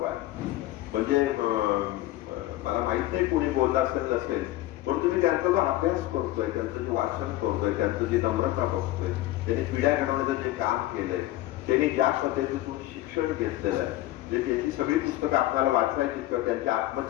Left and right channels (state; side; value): quieter; right; 16.1 dB